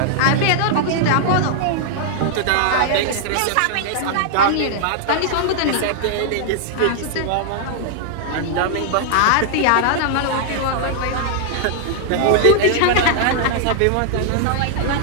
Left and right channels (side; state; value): both; different; correlation -0.01